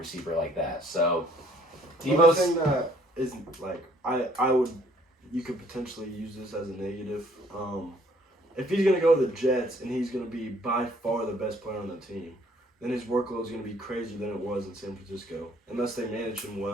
like that. So, Deebo, thing that is you could potentially use this as a negative. If he's gonna go to the Jets and he's gonna be by far the best player on the team, then his workload is gonna be crazier than it was in San Francisco, unless they manage him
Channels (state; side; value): normal; both; correlation 0.61